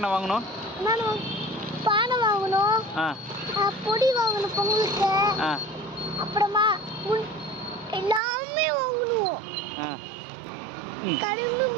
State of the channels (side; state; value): left; drops out; at 8.2 s